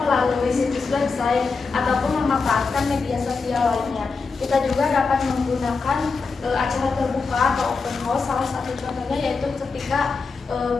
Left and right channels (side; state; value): right; quieter; 4.6 dB